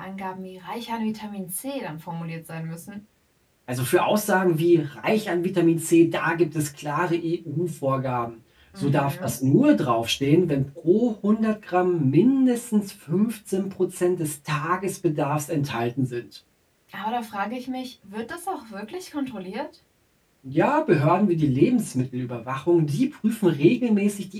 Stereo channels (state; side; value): identical; both; correlation 1.00